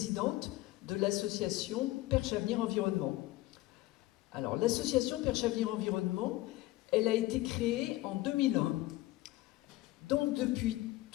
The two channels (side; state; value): right; quieter; 17.9 dB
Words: de l'association Perche Avenir Environnement. Alors, l'association Perche Avenir Environnement, elle a été créée en 2001. Donc, depuis